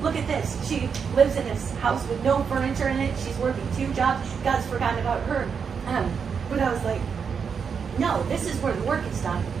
Look at this. She lives in this house with no furniture in it. She's working 2 jobs. God's forgotten about her. But I was like, no, this is where the work is done.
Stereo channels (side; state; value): left; quieter; 6.4 dB